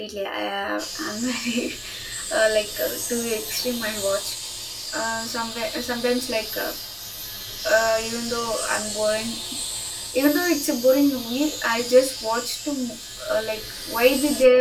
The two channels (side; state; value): both; identical; correlation 1.00